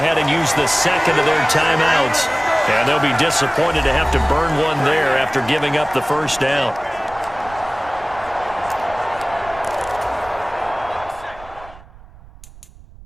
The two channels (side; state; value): right; noise; rumble, 21 dB below the sound